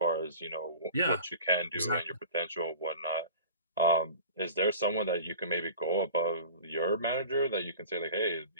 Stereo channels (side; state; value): both; inverted; correlation -0.39